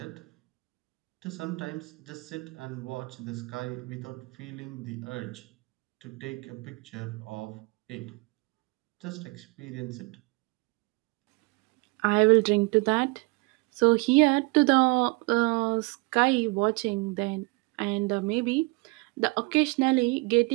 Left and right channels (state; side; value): quieter; left; 27.0 dB